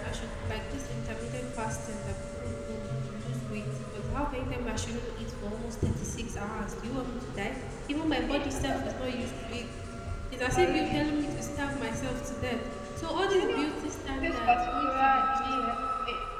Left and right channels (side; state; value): both; identical; correlation 1.00